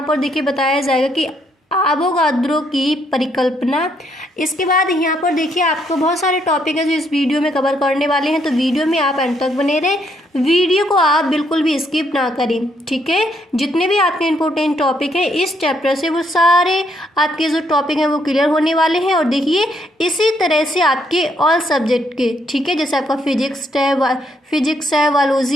पर देखिए बताया जाएगा कि आवोगाद्रो की परिकल्पना। इसके बाद यहाँ पर देखिए आपको बहुत सारे टॉपिक है जो इस वीडियो में कवर करने वाले हैं। तो वीडियो में आप अंत तक बने रहे, वीडियो को आप बिल्कुल भी स्किप ना करें, ठीक है। जितने भी आपके इंपॉर्टेंट टॉपिक हैं इस चैप्टर से वो सारे आपके जो टॉपिक हैं वो क्लियर होने वाले हैं। और देखिए इसी तरह से आपके ऑल सब्जेक्ट के, ठीक है, जैसे आपका फिजिक्स है,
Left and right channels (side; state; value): both; normal; correlation 0.73